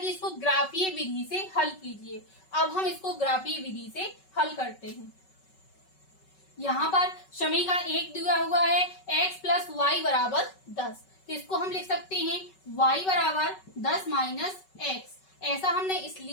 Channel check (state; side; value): late; right; 5.3 ms